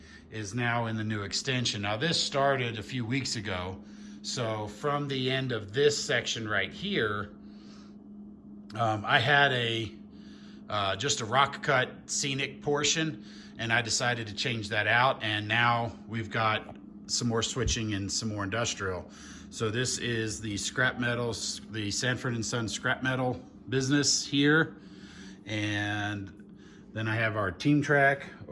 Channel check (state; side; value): identical; both; correlation 1.00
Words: is now in the new extension. Now this started a few weeks ago, so from the end of this section right here, I had just a rock cut scenic portion, and I decided to change that out, and now we've got some more switching and some more industrial. So this is the scrap metals, the Sanford & Son scrap metal business here. And then I have our team track